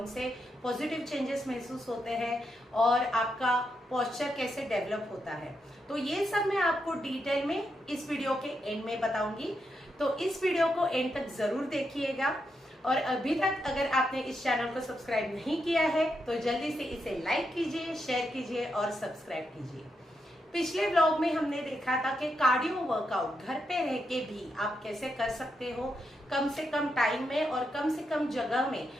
से पॉजिटिव चेंजेस महसूस होते हैं और आपका पोस्चर कैसे डेवलप होता है। तो ये सब मैं आपको डिटेल में इस वीडियो के एंड में बताऊंगी। तो इस वीडियो को एंड तक जरूर देखिएगा और अभी तक अगर आपने इस चैनल को सब्सक्राइब नहीं किया है तो जल्दी से इसे लाइक कीजिए, शेयर कीजिए और सब्सक्राइब कीजिए। पिछले व्लॉग में हमने देखा था कि कार्डियो वर्कआउट घर पे रह के भी आप कैसे कर सकते हो, कम से कम टाइम में और कम से कम जगह में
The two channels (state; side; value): normal; both; correlation 0.83